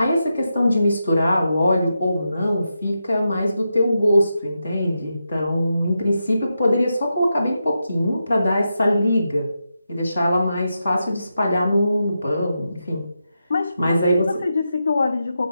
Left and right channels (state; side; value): inverted; both; correlation -0.87